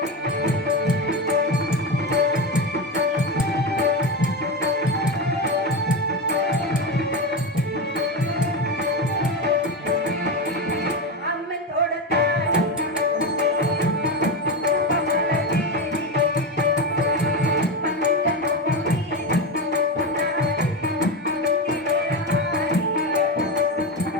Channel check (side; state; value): both; normal; correlation 0.16